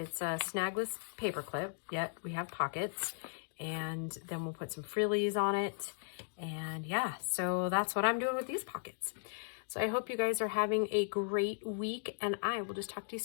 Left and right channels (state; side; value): silent; right; digital silence